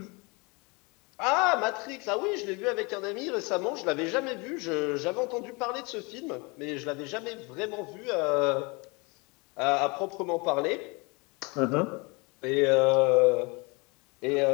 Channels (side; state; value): right; quieter; 28.6 dB